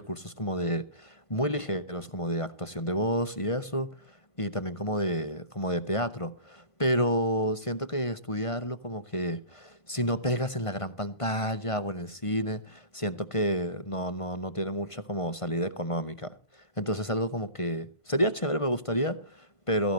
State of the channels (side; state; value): right; late; 1.5 ms